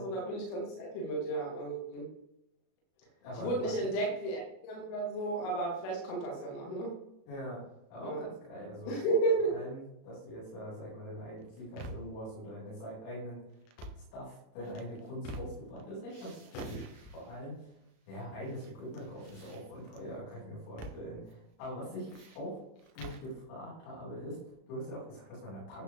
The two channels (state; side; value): late; right; 36 ms